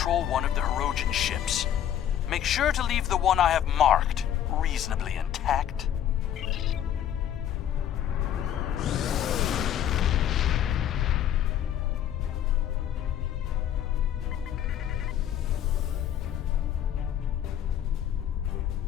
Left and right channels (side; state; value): right; quieter; 10.5 dB